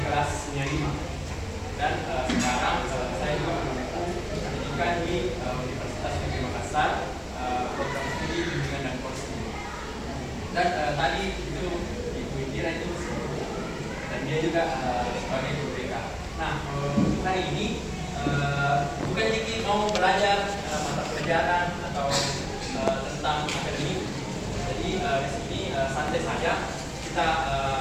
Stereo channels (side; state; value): both; identical; correlation 1.00